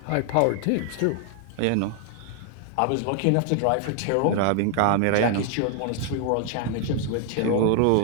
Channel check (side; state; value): both; different; correlation 0.00